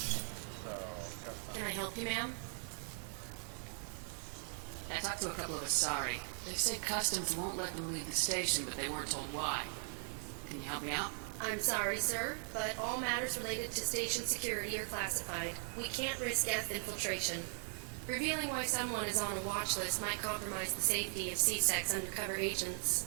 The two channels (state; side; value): silent; left; 52 dB below the other